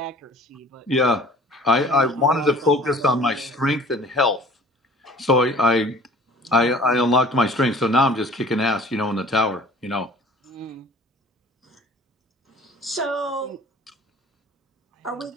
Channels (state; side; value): normal; both; correlation 0.48